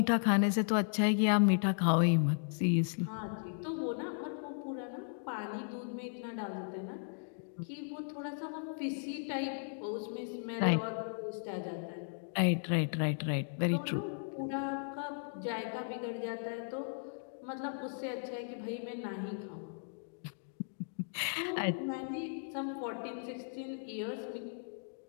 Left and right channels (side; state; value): right; silent; digital silence